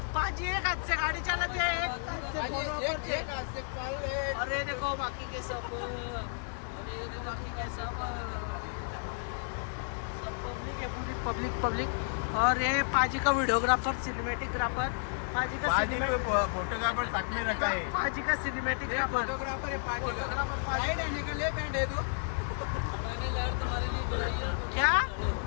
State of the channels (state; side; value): silent; right; digital silence